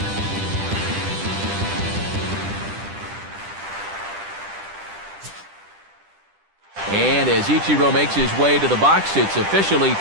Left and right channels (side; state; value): left; late; 10 ms